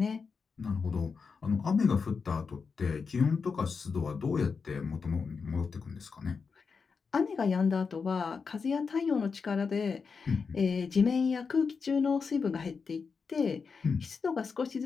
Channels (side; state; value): right; quieter; 5.3 dB